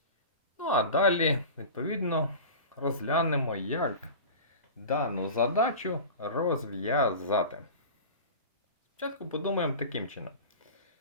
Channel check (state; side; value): inverted; both; correlation -0.33